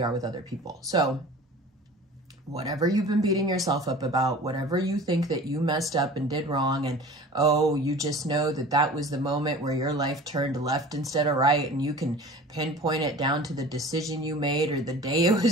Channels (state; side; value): normal; both; correlation 0.41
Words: are with other people. So whatever you've been beating yourself up about, whatever you think that you messed up and did wrong, and oh, you just know that that was the moment where your life turned left instead of right, and you can pinpoint it down to the decision you made or the day it